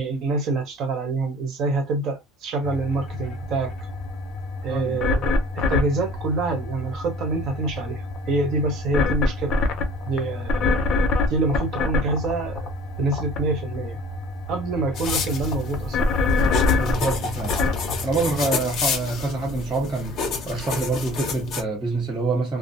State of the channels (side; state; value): both; normal; correlation 0.48